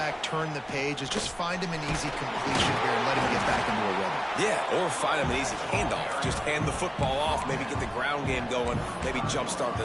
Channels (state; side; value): identical; both; correlation 1.00